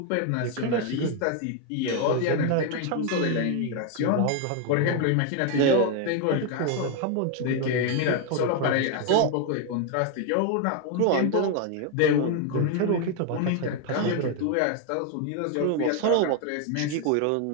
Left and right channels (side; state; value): both; different; correlation 0.01